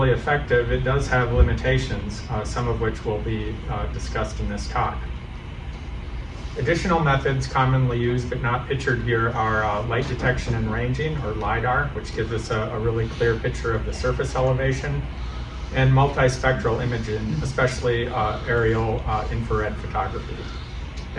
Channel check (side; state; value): both; identical; correlation 1.00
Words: effective, it does have limitations, some of which will be discussed in this talk. Additional methods commonly used but not pictured here are light detection and ranging, or LiDAR, which gives us a really clear picture of the surface elevation, and multispectral imaging, especially aerial infrared photography.